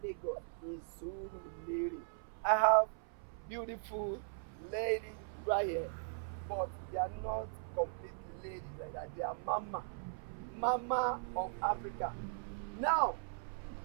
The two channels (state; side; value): silent; left; 52 dB below the other